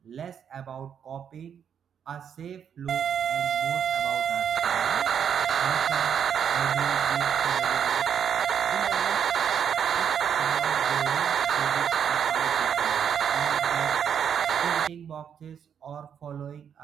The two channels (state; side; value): quieter; left; 8.1 dB